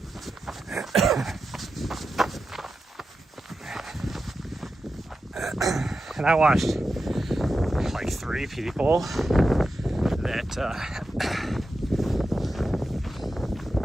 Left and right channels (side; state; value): both; normal; correlation 0.90